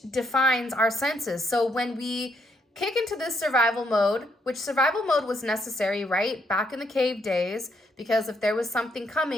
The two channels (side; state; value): both; normal; correlation 0.74